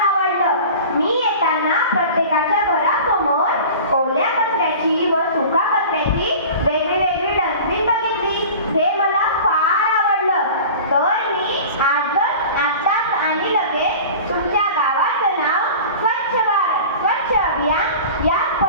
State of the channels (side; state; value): both; inverted; correlation -0.38